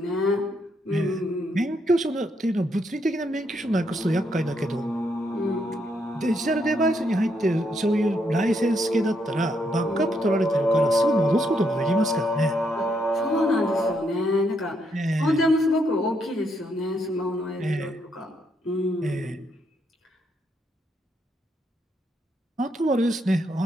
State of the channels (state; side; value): normal; both; correlation 0.76